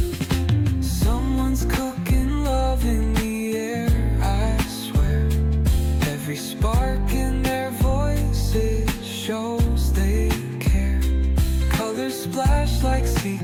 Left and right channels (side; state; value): both; identical; correlation 1.00